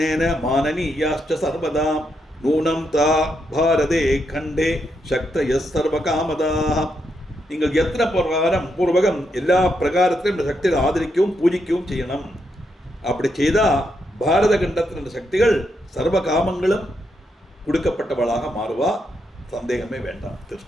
மானனீயாச்ச சர்வதா நூனம் தா பாரதே கண்டே சக்தய சர்வ காமதா. நீங்கள் எத்தனை பூர்வகம் எல்லா பிரகாரத்திலும் இந்த சக்தியை ஆதரிக்கவும் பூஜிக்கவும் செய்யணும். அப்படி செய்தால் பாரத கண்டத்தில் இந்த சக்திகள் சர்வ காமங்களும் கொடுக்கப்பட்டவளாக மாறுவா. சந்தேகமே வேண்டாம்.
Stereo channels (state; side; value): normal; both; correlation 0.81